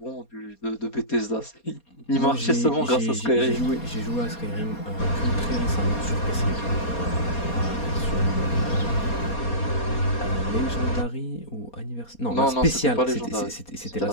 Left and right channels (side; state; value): right; late; 4.2 ms